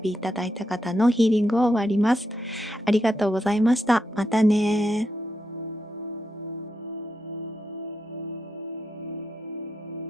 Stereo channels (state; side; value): normal; both; correlation 0.84